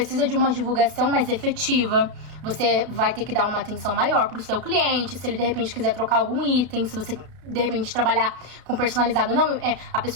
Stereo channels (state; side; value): late; left; 33 ms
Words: de uma divulgação mais efetiva, você vai ter que dar uma atenção maior pro seu cliente, se ele de repente quiser trocar algum item, se você de repente trabalhar com personalizado, não, a